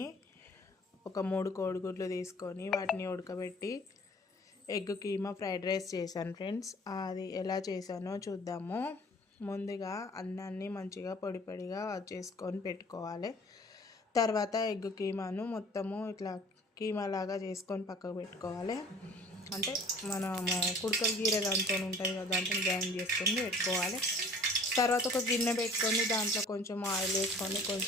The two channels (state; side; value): normal; both; correlation 0.49